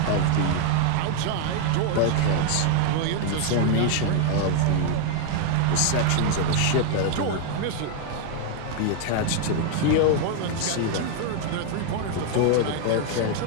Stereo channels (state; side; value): different; both; correlation 0.00